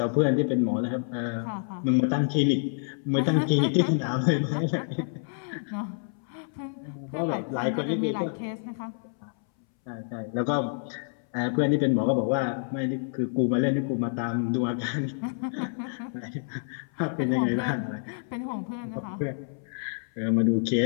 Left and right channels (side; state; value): right; silent; 59 dB below the other